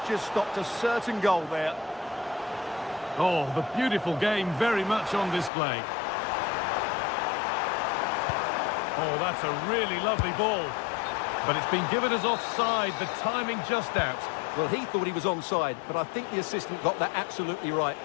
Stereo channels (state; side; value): drops out; right; at 5.5 s